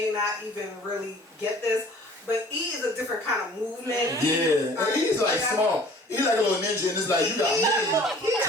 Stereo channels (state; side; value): normal; both; correlation 0.50